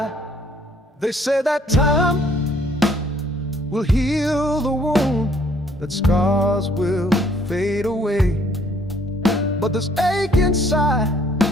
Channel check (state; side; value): normal; both; correlation 0.63